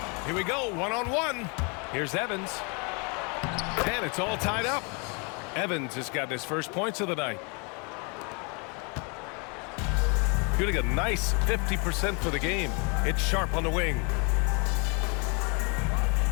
Here we go, 1-on-1. Here's Evans. And it's all tied up. Evans has gotten his first points of the night. Shooting a nice 50% for the game. It's Sharp on the wing.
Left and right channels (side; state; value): right; quieter; 33.2 dB